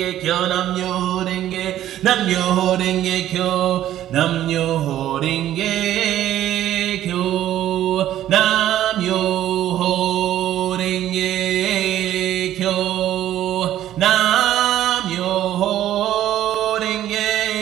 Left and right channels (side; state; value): left; quieter; 12.4 dB